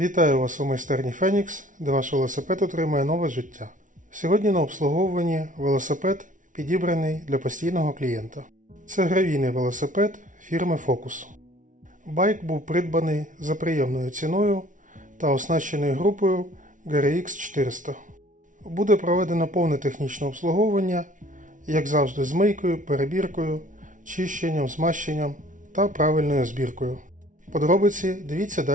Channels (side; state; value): left; late; 0.37 ms